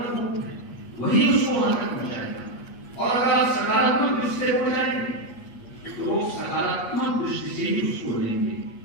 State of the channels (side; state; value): right; late; 8.4 ms